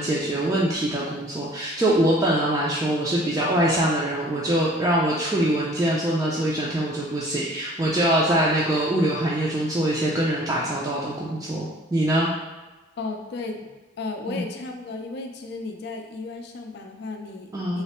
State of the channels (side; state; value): both; normal; correlation 0.52